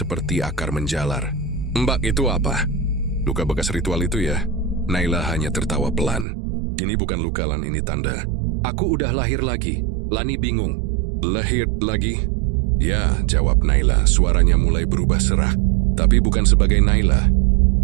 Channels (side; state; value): left; drops out; at 6.2 s